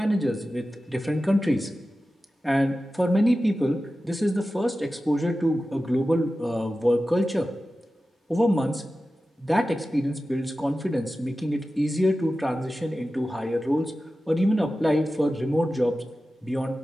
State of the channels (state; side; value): normal; both; correlation 0.94